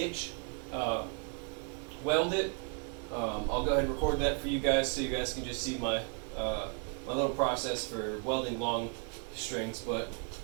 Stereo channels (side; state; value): left; quieter; 38.3 dB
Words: weld it. I'll go ahead and record that for you guys so you guys can just see my, my little process for welding long strings, but